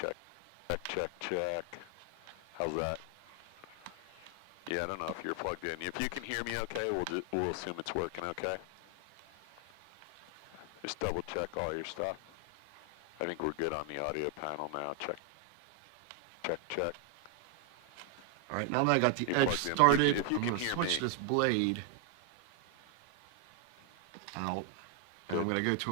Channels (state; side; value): different; both; correlation 0.00